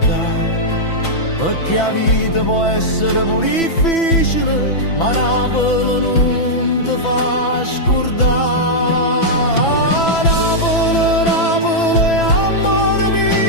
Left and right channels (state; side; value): late; right; 6.0 ms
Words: perché la vita può essere pure difficile, ma Napoli non ti fa scordare. Napoli, Napoli, amore